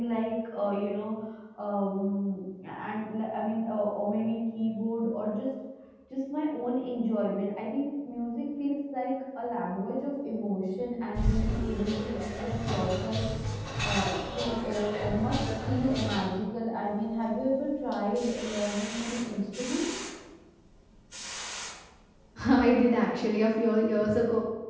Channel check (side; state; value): both; identical; correlation 1.00